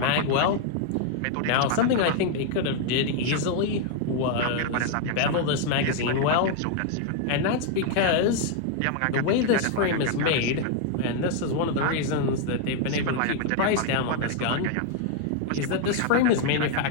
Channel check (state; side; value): different; both; correlation 0.00